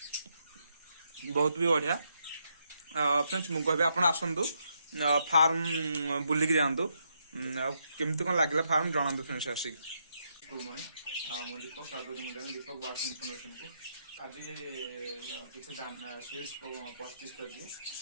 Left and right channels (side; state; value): both; inverted; correlation -0.79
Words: बहुत भी बढ़िया फ्रेंड्स मुझे कहबी आप आसतु फार्म बुलिक जातु केमती कौन लगे फार्म जनातु फ्रेंड्स आसिक गुड मॉर्निंग मुझे दीपक दीपक बार्स इनफॉरमेशन को आज किसी सीड्स परचेज कर